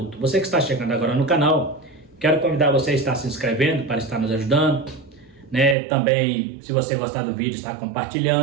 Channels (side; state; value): left; drops out; at 5.8 s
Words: Você que está chegando agora no canal, quero convidar você a estar se inscrevendo para estar nos ajudando, também, se você gostar do vídeo, estar